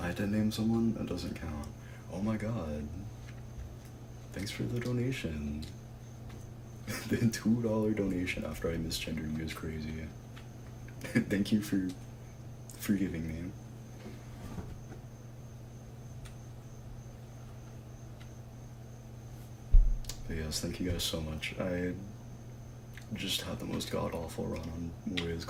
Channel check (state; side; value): identical; both; correlation 1.00